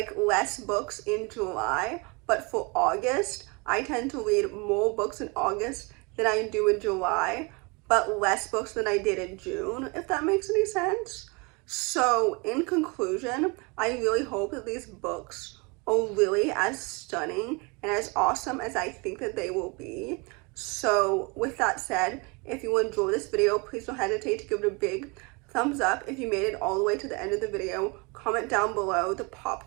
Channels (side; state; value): left; quieter; 29.2 dB